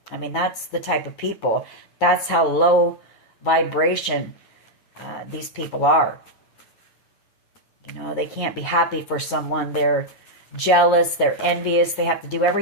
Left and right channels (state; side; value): late; right; 9.6 ms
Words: I mean, that's the type of people. That's how low vibration these people are. You know, they can't be happy for someone. They're jealous, they're envious, they have to do